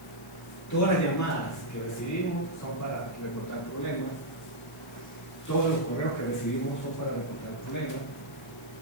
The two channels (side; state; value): left; noise; hiss, 21 dB below the sound